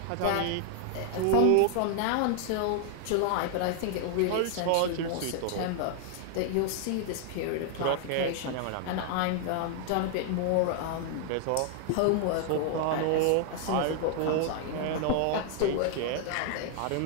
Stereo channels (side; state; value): both; different; correlation 0.00